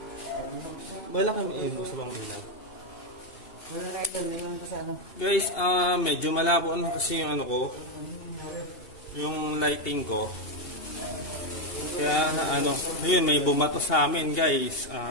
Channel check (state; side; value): late; right; 2.8 ms